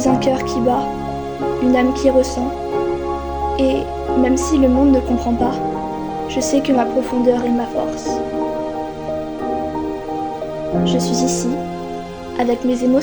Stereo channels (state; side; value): identical; both; correlation 1.00